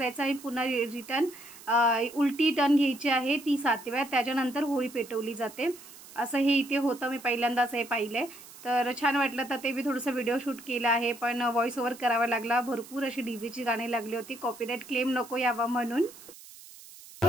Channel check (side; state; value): right; noise; hiss, 18 dB below the sound